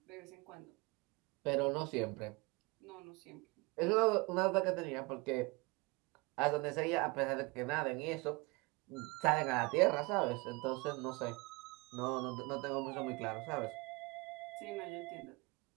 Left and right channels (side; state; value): left; quieter; 26.2 dB